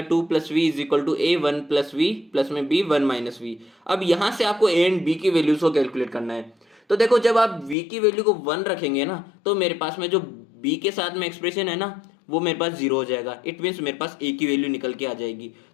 2 + v = a 1 + v प्लस में b 1 - v। अब यहाँ से आपको a एंड b की वैल्यूज को कैलकुलेट करना है। तो देखो जब आप v की वैल्यू को 1 रखेंगे ना तो मेरे पास में जो b के साथ में एक्सप्रेशन है ना वो मेरे पास 0 हो जाएगा, इट मीन्स मेरे पास a की वैल्यू निकल के आ जाएगी।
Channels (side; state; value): right; drops out; at 7.8 s